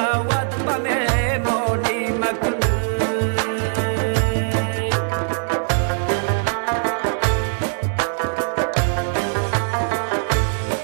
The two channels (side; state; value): left; silent; digital silence